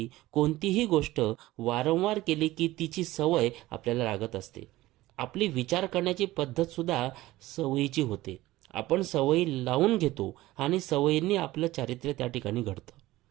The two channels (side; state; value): left; quieter; 17.4 dB